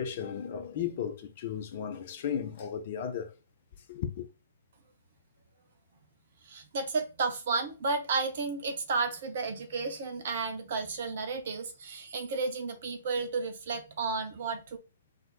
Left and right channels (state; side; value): inverted; both; correlation -0.50